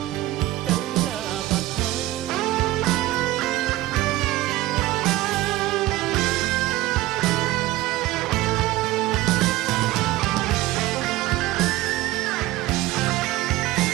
ទៅណាបាត់ហើយ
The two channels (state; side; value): quieter; left; 16.8 dB